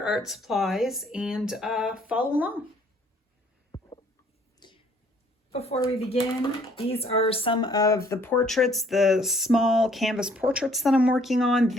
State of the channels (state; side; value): normal; both; correlation 0.61